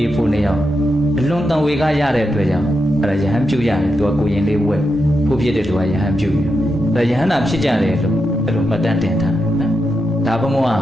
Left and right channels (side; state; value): both; normal; correlation 0.86